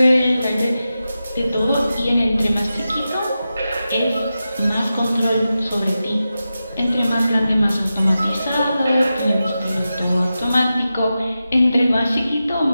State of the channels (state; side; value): inverted; both; correlation -0.92